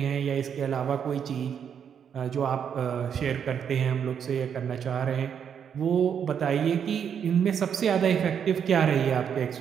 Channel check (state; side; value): quieter; left; 7.9 dB